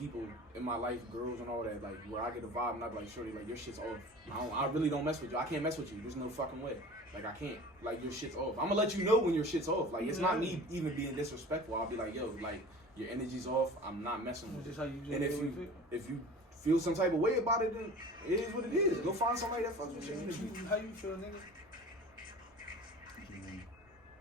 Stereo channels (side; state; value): both; normal; correlation 0.40